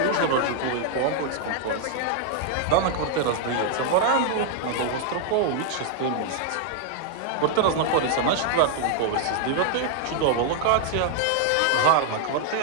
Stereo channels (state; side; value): different; both; correlation 0.00